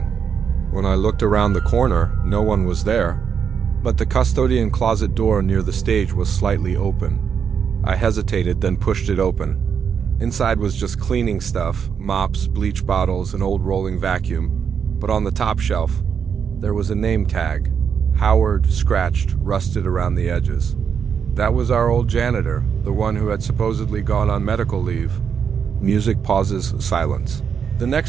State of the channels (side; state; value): left; quieter; 7.1 dB